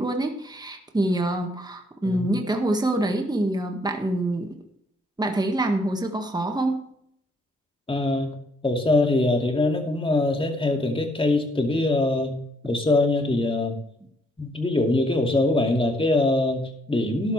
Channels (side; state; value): both; normal; correlation 0.69